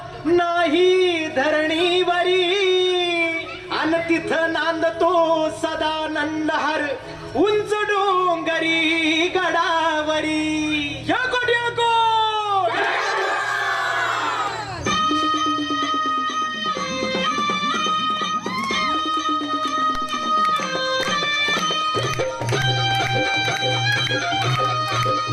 नाही धरणीवरी अन तिथं नांदतो सदानंद हर उंच डोंगरी गडावरी याकोट याकोट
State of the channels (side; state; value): both; identical; correlation 1.00